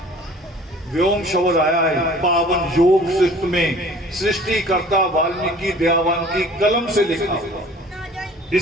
व्योम शब्द आया है पावन योग शिष्ट में, सृष्टिकर्ता वाल्मीकि दयावान की कलम से लिखा हुआ,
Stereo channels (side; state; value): both; normal; correlation 0.49